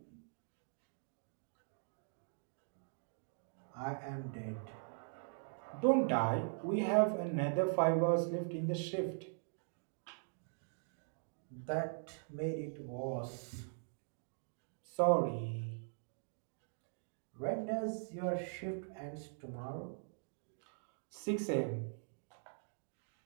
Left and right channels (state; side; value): silent; left; digital silence